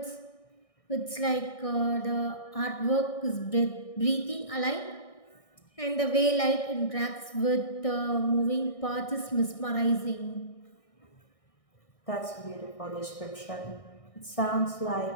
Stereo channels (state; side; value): late; right; 1.6 ms